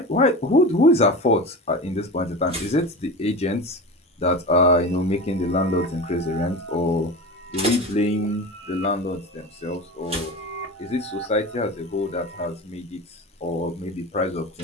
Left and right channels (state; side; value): normal; both; correlation 0.28